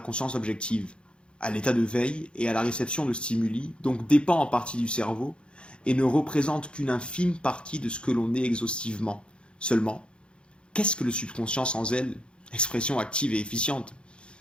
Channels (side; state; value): right; late; 0.055 ms